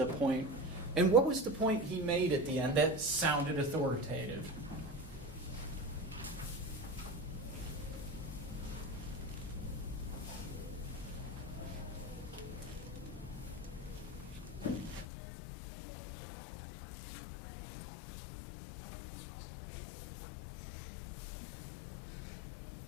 point. And what was the point he made at the end that sounded authoritative?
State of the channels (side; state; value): right; drops out; at 15.1 s